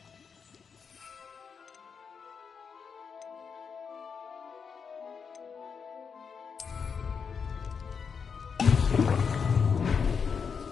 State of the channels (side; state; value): right; quieter; 6.1 dB